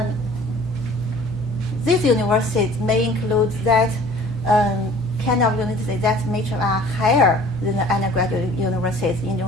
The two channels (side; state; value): both; normal; correlation 0.49